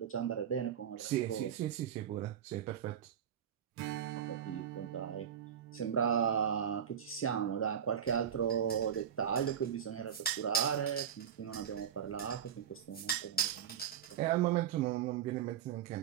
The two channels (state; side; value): quieter; left; 8.8 dB